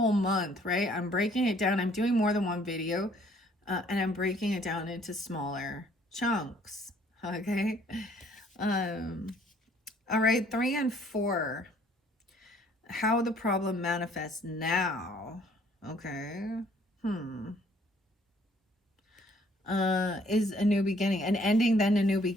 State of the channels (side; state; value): both; normal; correlation 0.61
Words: month, right? I'm breaking it down. I'm doing more than one video, and I'm breaking it down into smaller chunks. Okay. All right, 3 and 4. How the problem manifests now. Okay. Is a new beginning, an ending, then a new